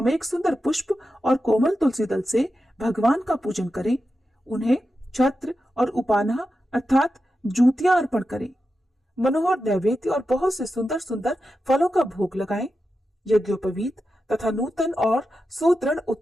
सुंदर पुष्प और कोमल तुलसी दल से भगवान का पूजन करें। उन्हें छत्र और उपाना अर्थात जूतियां अर्पण करें। मनोहर नैवेद्य और बहुत से सुंदर सुंदर फलों का भोग लगाएं। यज्ञोपवीत तथा नूतन और सुदृढ़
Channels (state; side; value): normal; both; correlation 0.90